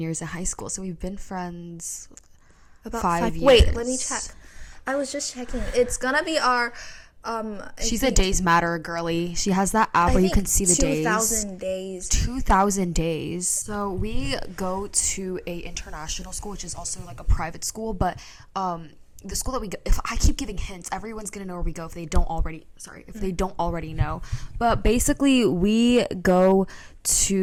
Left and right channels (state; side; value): identical; both; correlation 1.00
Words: in high school. So we've been friends About 5 years. Wait, let me check. I was just checking. It's gonna be our... She's a Days Matter girly. She has that app where you can see the 2,000 days. 2,000 days. So we go to a international school, which is also like a private school, but the school that we go, if I keep giving hints, everyone's gonna know where we go if they don't already know. But basically, we go